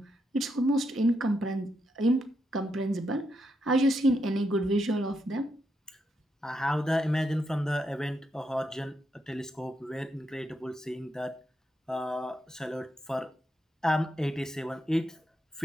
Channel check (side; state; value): both; normal; correlation 0.81